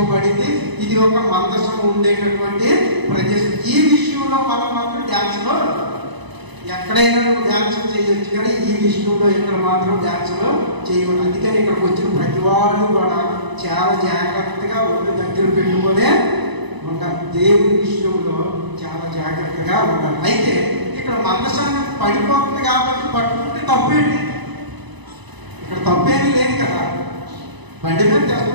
ఇది ఒక మందసం ఉండేటటువంటి ప్రదేశం. ఈ విషయంలో మనం మాత్రం డ్యాన్స్లో ఎక్కడైనా నువ్వు డ్యాన్స్ చేయొచ్చు, కానీ ఈ విషయంలో ఇక్కడ మాత్రం డ్యాన్స్లో చేయకూడదు. అందుకని ఇక్కడికి వచ్చిన ప్రతి వాళ్ళు కూడా చాలా జాగ్రత్తగా ఒళ్ళు దగ్గర పెట్టుకునే ఉండాలి. దేవుని విషయంలో చాలా జాగ్రత్తగా ఉండాలి. అయితే ఇక్కడ మందసాన్ని పడిపోతుంది కాబట్టి పట్టుకుంటే తప్పేంటి? ఇక్కడ తప్పేమీ లేదు కదా. బండి మీద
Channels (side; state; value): left; late; 1.0 ms